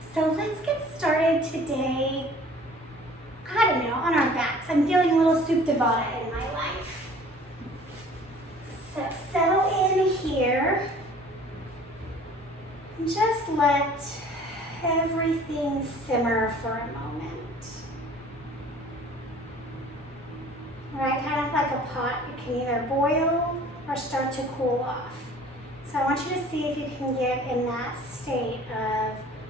So let's get started today, I don't know, on our backs. I'm feeling a little soup de vada in my life. So settle in here. And just let everything simmer for a moment. Right, kind of like a pot, it can either boil or start to cool off. So I want you to see if you can get in that state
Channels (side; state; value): both; normal; correlation 0.49